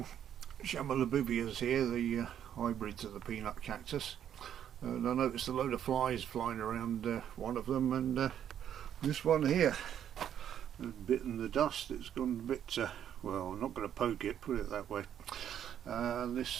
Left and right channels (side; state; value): left; quieter; 9.8 dB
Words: Chamalabubias here, the hybrids of the peanut cactus, and I noticed a load of flies flying around one of them, and this one here has bitten the dust. It's gone a bit, well, I'm not going to poke it, put it that way.